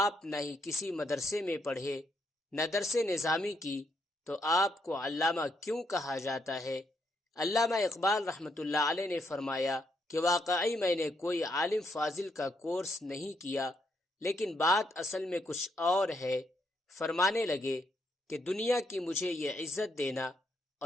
نہ ہی کسی مدرسے میں پڑھے نہ درس نظامی کی تو آپ کو علامہ کیوں کہا جاتا ہے؟ علامہ اقبال رحمۃ اللہ علیہ نے فرمایا کہ واقعی میں نے کوئی عالم فاضل کا کورس نہیں کیا، لیکن بات اصل میں کچھ اور ہے۔ فرمانے لگے کہ دنیا کی مجھے یہ عزت دینا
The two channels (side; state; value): both; normal; correlation 0.76